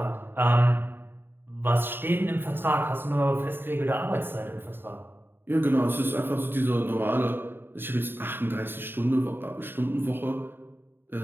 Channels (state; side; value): late; left; 0.10 ms